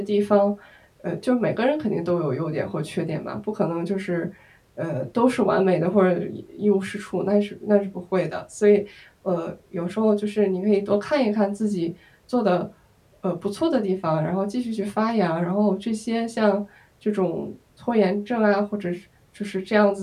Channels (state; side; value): identical; both; correlation 1.00